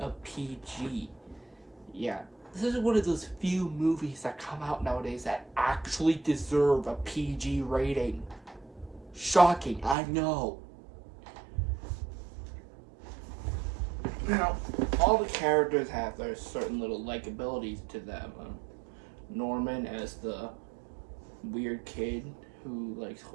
PG. Yeah, this is one of those few movies that come out nowadays that actually deserve a PG rating. Shocking, I know. Now, all the characters have their certain little likabilities to them. Norman as the weird kid who likes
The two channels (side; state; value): left; drops out; at 10.0 s